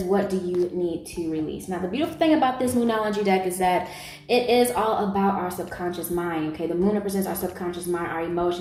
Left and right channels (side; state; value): both; identical; correlation 1.00